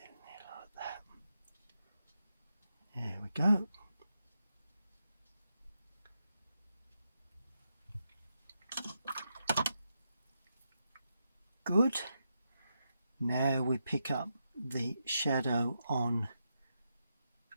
there like that. There we go. Good. Now we pick up the shadow on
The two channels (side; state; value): both; inverted; correlation -0.84